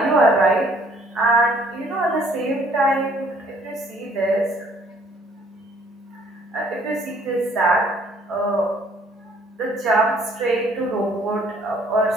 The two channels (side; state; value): both; normal; correlation 0.61